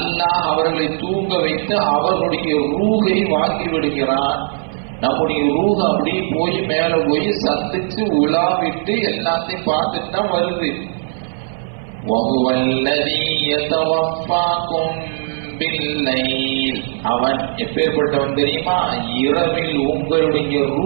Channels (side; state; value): left; silent; 58 dB below the other